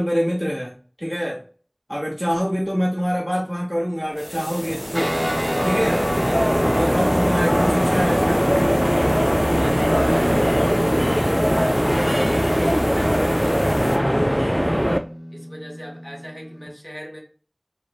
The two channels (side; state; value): both; identical; correlation 1.00